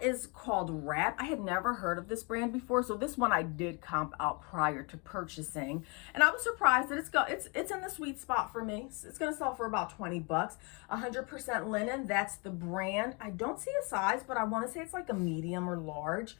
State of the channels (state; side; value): quieter; right; 31.9 dB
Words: is called Wrap. I had never heard of this brand before, so this one I did comp out prior to purchasing, and I was surprised that it's in the sweet spot for me. It's gonna sell for about 20 bucks. 100% linen. That's the brand. I don't see a size, but I want to say it's like a medium or large.